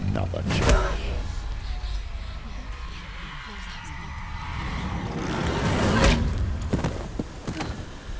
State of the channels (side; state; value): both; identical; correlation 1.00